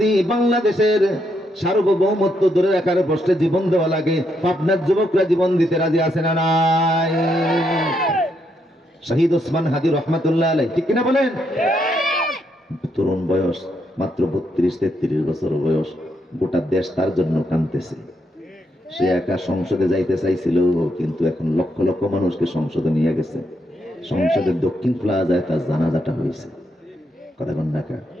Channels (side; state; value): both; normal; correlation 0.78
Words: বাংলাদেশের সার্বভৌমত্ব ধরে রাখার প্রশ্নে জীবন দেওয়া লাগে, পাবনার যুবকরা জীবন দিতে রাজি আছে না নাই? শহীদ ওসমান হাদি রহমাতুল্লাহ আলাইহি, ঠিক কিনা বলেন? তরুণ বয়স, মাত্র 32-33 বছর বয়স, গোটা দেশ তার জন্য কাঁদতেছে। সে একা সংসদে যাইতে চাইছিল, কিন্তু এখন লক্ষ লক্ষ মানুষকে সংসদে নিয়ে গেছে। সংসদের দক্ষিণ প্লাজায় তার জানাজাটা হয়েছে। কথা বল না কা?